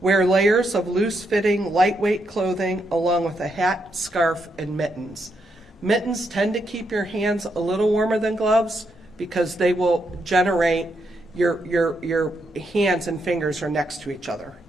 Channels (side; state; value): both; normal; correlation 0.79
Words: Wear layers of loose-fitting, lightweight clothing along with a hat, scarf, and mittens. Mittens tend to keep your hands a little warmer than gloves because they will generate, your hands and fingers are next to each other